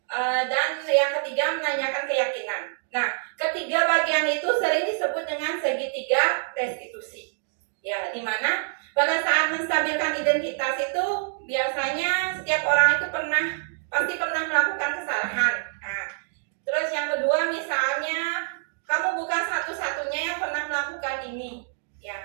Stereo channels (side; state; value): left; silent; digital silence